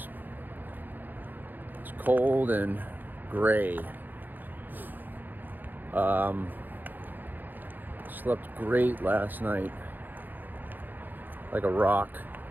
cold and gray. Slept great last night, like a rock.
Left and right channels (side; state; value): left; late; 0.088 ms